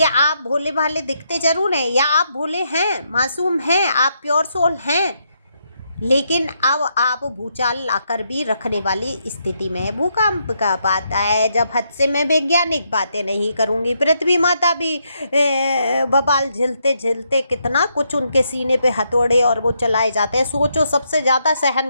आप भोले भाले दिखते जरूर हैं, या आप भोले हैं, मासूम हैं, आप प्योर सोल हैं, लेकिन अब आप भूचाल लाकर भी रखने वाली स्थिति में है। भूकंप कब आता है? जब हद से मैं वैज्ञानिक बातें नहीं करूँगी। पृथ्वी माता भी बवाल झेलते झेलते कितना कुछ उनके सीने पे हथौड़े और वो चलाए जाते हैं। सोचो सबसे ज़्यादा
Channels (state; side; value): inverted; both; correlation -0.78